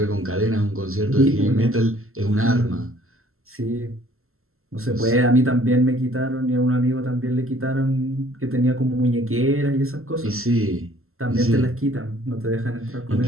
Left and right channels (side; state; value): left; late; 0.62 ms